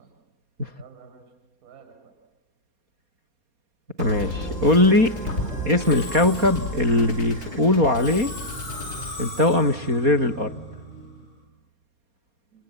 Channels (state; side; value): late; left; 4.3 ms